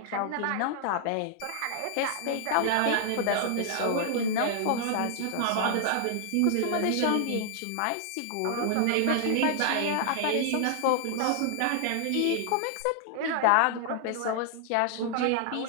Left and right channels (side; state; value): both; different; correlation 0.00